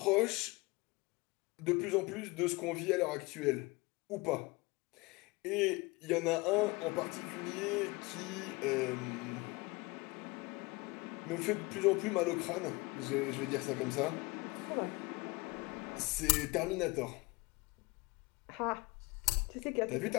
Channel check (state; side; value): quieter; right; 24.6 dB